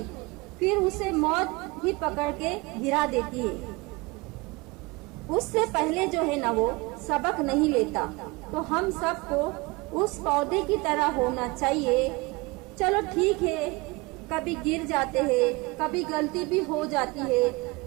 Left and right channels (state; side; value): quieter; left; 24.7 dB